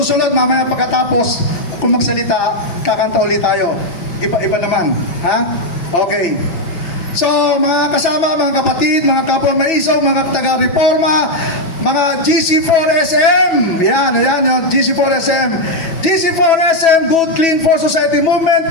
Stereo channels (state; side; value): late; right; 6.1 ms